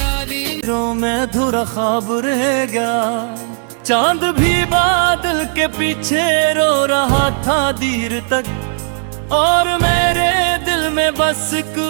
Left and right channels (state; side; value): silent; left; digital silence